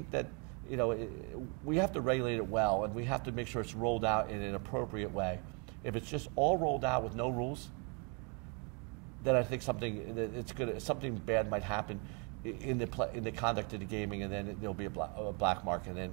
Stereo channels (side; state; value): left; quieter; 34.8 dB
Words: that we have to regulate it well, and we have to make sure it's rolled out in an appropriate way. If it's just all rolled out with no rules, then I think something bad might happen in the conduct of the gaming, and then there'll be a black market,